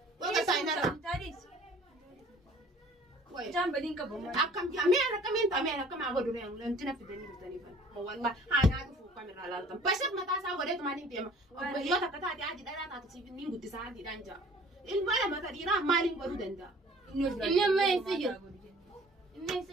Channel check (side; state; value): both; normal; correlation 0.51